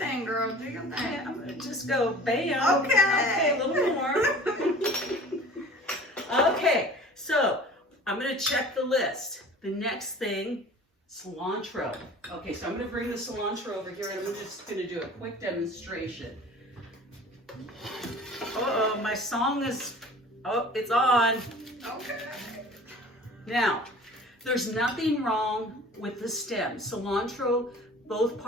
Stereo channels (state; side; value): normal; both; correlation 0.44